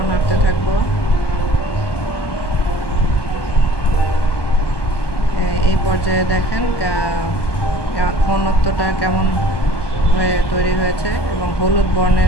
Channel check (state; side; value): late; right; 1.2 ms